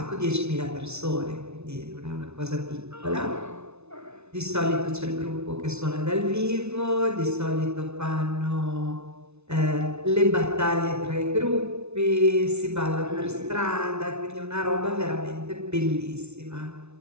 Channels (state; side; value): late; left; 0.81 ms